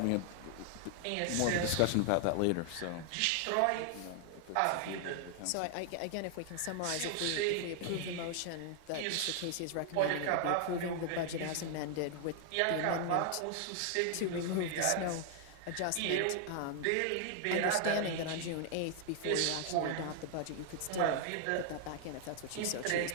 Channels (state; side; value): different; both; correlation 0.00